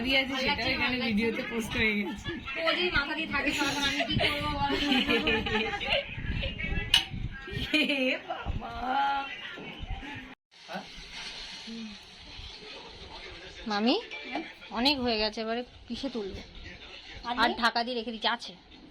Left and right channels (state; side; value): identical; both; correlation 1.00